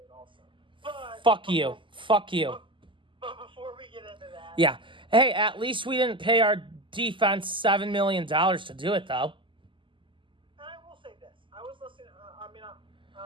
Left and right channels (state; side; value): late; left; 0.25 ms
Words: also. Fuck you. But before we get into that... Yeah. Hey, at least we didn't pay our defense $7 million to do it, though. And I will say this. I was listening...